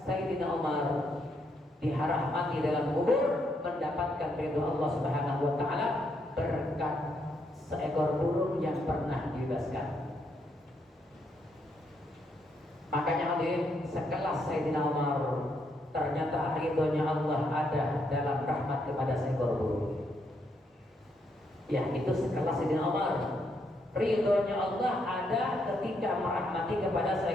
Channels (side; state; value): both; normal; correlation 0.76